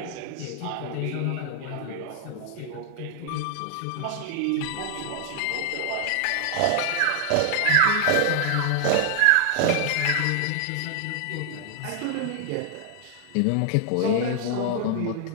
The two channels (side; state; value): both; different; correlation 0.00